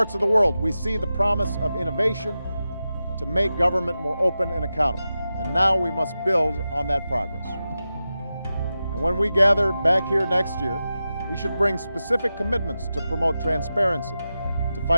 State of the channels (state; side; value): inverted; both; correlation -0.92